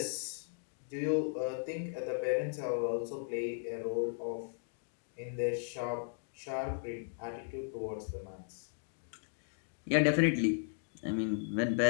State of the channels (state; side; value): silent; right; digital silence